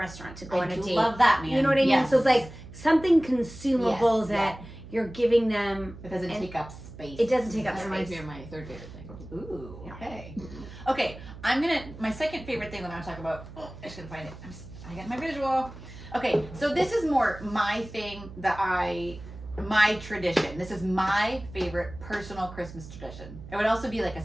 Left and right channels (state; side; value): noise; right; hum, 15 dB below the sound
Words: to go I on a do date. love that, man. You know what I mean? Yes. So it's like something consumable Yes, that you're giving them. It doesn't and take up space. It doesn't take up That reminds me space. of my third favorite thing. Ooh, Yeah. okay. Okay, my second favorite thing that I'm gonna talk about, I just gotta find it. I got my visual. Okay, so this is more my thing my tradition. This is my favorite personal Christmas tradition. It would also be like a